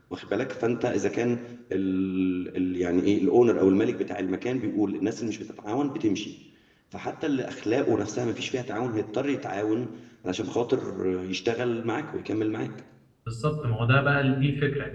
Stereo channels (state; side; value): identical; both; correlation 1.00